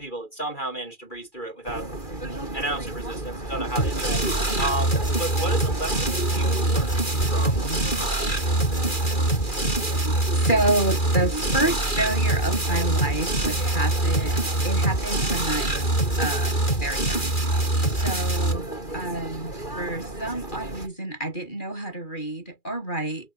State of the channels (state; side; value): late; right; 2.4 ms